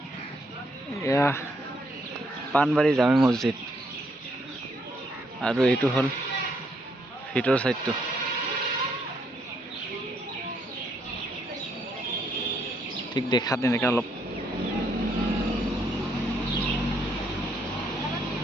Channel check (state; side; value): normal; both; correlation 0.73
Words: এয়া পানবাৰী জামে মছজিদ আৰু এইটো হ'ল ভিতৰ চাইডটো ঠিক দেখাত এনেকৈ অলপ